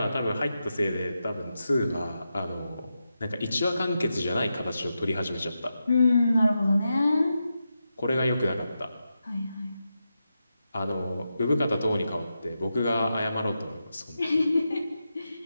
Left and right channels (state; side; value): inverted; both; correlation -0.88